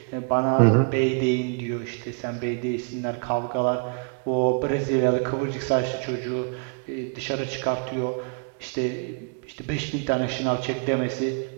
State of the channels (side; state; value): left; quieter; 36.4 dB